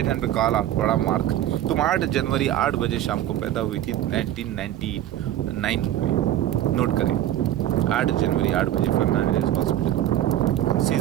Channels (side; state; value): left; quieter; 12.4 dB